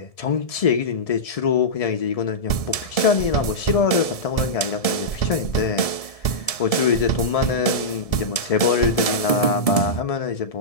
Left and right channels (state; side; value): late; right; 1.7 ms